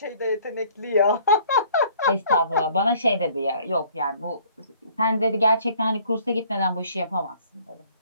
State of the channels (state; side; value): inverted; both; correlation -0.57